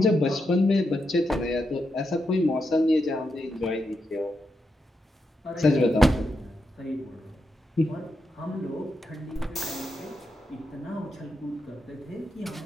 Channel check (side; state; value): both; normal; correlation 0.85